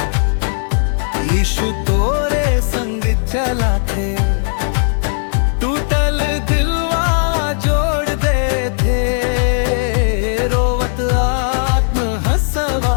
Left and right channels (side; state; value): right; silent; 63 dB below the other